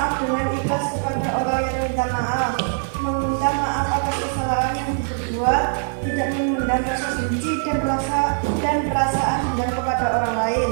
dengan ikhlas kepada orang yang minta maaf, meminta maaf atas kesalahan yang diperbuat, tidak memendam rasa benci dan perasaan dendam kepada orang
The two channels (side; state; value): left; silent; digital silence